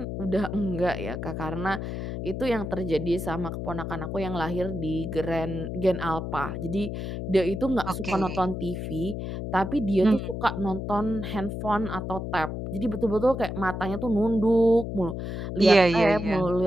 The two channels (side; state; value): left; noise; hum, 5 dB below the sound